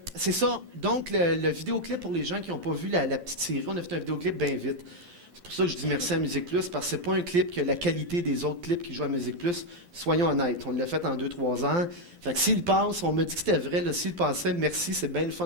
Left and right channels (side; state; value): left; late; 12 ms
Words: c'est ça. Donc, le vidéoclip, pour les gens qui n'ont pas vu la petite série, on a fait un vidéoclip bien vite. C'est pour ça que je dis merci à Musique Plus, parce que c'est pas un clip qui a la qualité des autres clips qui jouent à Musique Plus. Soyons honnêtes, on l'a fait en 2-3 ans. Fait que s'il passe, on m'a dit que c'était vrai, là, s'il passait, merci, c'est bien le